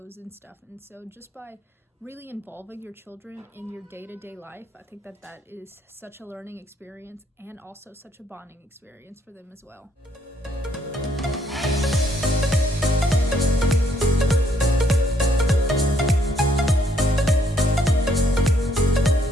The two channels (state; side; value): normal; both; correlation 0.70